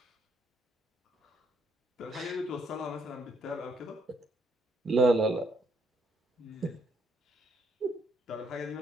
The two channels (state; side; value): normal; both; correlation 0.72